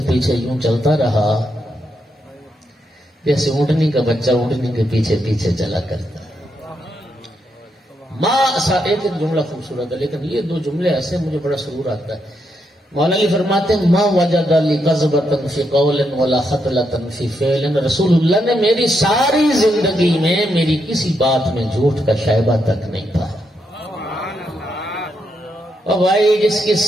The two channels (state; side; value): normal; both; correlation 0.80